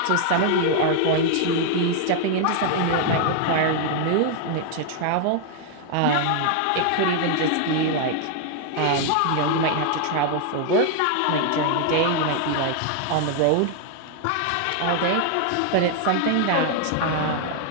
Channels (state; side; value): different; both; correlation 0.00